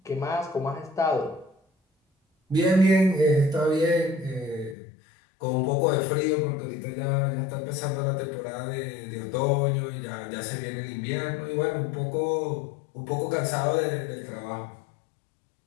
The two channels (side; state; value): right; drops out; at 4.8 s